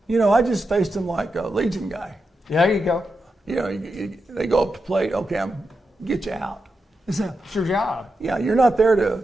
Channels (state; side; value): normal; both; correlation 0.88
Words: I just faced him like a Legion guy. Yeah, there you go. They go up to plate. Okay, I'm get you out. It's your job. Yeah, you're not there to